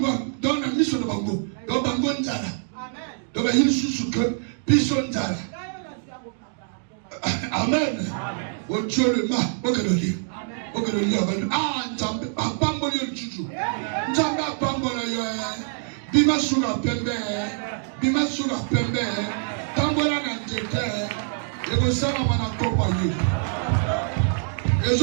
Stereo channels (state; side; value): silent; left; 62 dB below the other